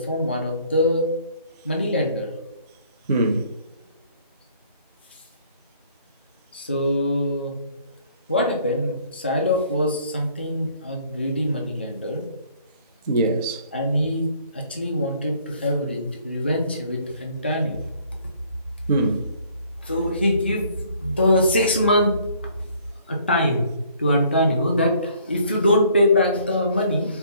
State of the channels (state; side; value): inverted; both; correlation -0.60